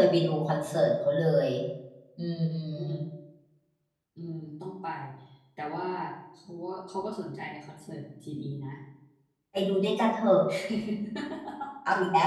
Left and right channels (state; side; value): identical; both; correlation 1.00